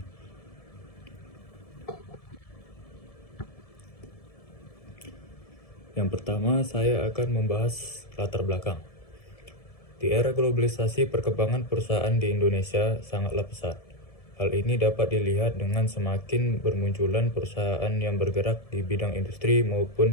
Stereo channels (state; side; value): late; right; 1.7 ms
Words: Yang pertama, saya akan membahas latar belakang. Di era globalisasi, perkembangan perusahaan di Indonesia sangatlah pesat. Hal ini dapat dilihat dengan semakin bermunculan perusahaan yang bergerak di bidang industri